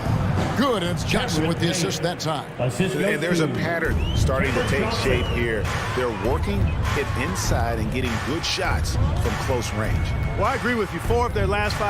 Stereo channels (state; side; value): identical; both; correlation 1.00